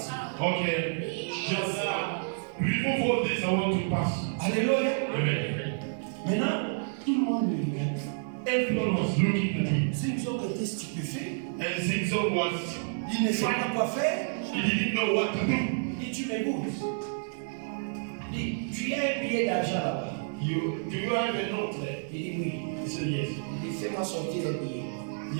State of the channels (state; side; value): silent; left; 58 dB below the other